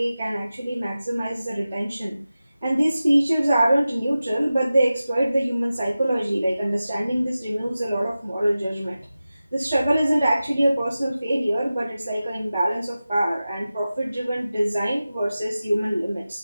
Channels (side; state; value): both; inverted; correlation -0.95